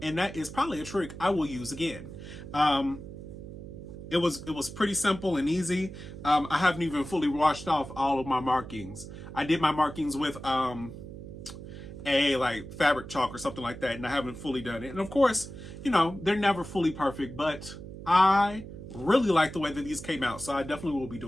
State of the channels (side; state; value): right; noise; hum, 12 dB below the sound